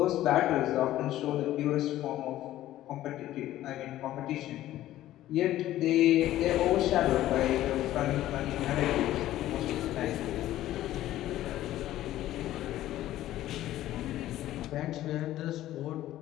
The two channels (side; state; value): right; quieter; 14.1 dB